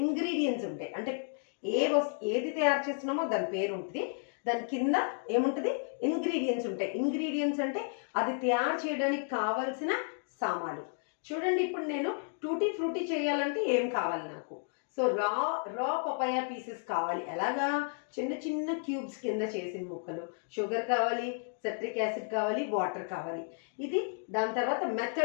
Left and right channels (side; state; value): right; silent; 56 dB below the other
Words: ఇంగ్రీడియంట్స్ ఉంటాయి. అంటే ఏది తయారు చేస్తున్నామో దాని పేరు ఉంటుంది. దాని కింద ఏముంటుంది? ఇంగ్రీడియంట్స్ ఉంటాయి. ఇంగ్రీడియంట్స్ అంటే అది తయారు చేయడానికి కావాల్సిన సామాన్లు. చూడండి, ఇప్పుడు నేను టూటీ ఫ్రూటీ చేయాలంటే ఏం కావాలి నాకు? సో రా పపాయ పీసెస్ కావాలి. ఎలాగా? చిన్న చిన్న క్యూబ్స్ కింద చేసిన ముక్కలు. షుగర్ కావాలి, సిట్రిక్ యాసిడ్ కావాలి, వాటర్ కావాలి. ఇది దాని తర్వాత